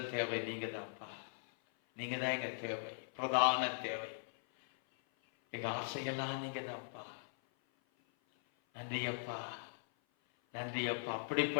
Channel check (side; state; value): right; silent; 51 dB below the other